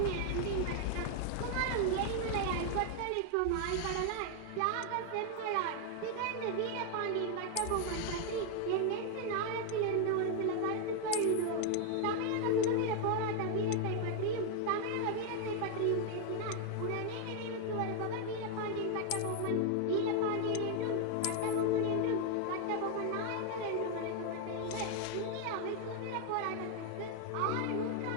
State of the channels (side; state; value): both; different; correlation 0.00